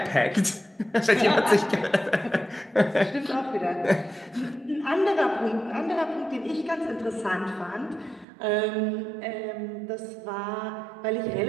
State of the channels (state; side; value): drops out; left; at 8.2 s